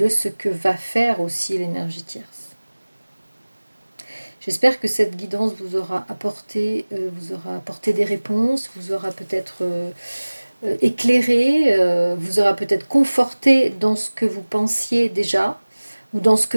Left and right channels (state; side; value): inverted; both; correlation -1.00